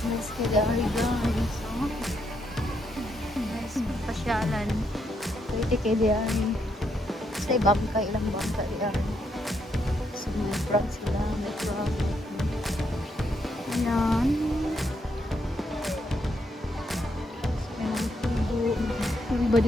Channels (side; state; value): both; normal; correlation 0.77